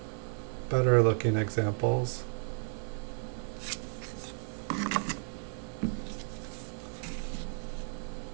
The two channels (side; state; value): left; silent; 55 dB below the other